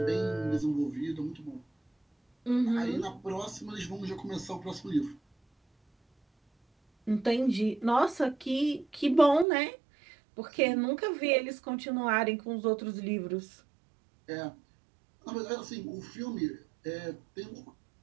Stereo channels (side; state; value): left; drops out; at 9.5 s